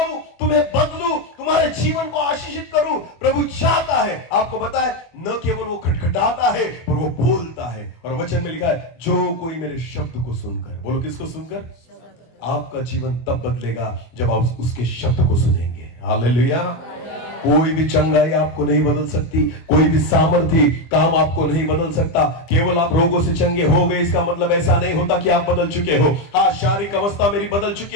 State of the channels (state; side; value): late; right; 24 ms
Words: तुम्हें बदलूं, तुम्हारे जीवन को आशीषित करूं। प्रभु चाहता है, आपको पता है, न केवल वो खटखटाता है पर वो बोलता है। और वचन में लिखा है, जो कोई मेरे शब्द को सुनकर, बोलो किसको सुनकर? आपका जीवन तब बदलेगा जब आप उसके शब्द को सुनेंगे। हालेलुया। कोई भी चंगाई आपको नहीं बदल सकती, कोई भी सामर्थ्य काम आपको नहीं बदल सकता। केवल आप रोगों से चंगे हो गए, इसका मतलब ऐसा नहीं होता कि आप बदल चुके हो। हाँ, शारीरिक अवस्था मेरी बदल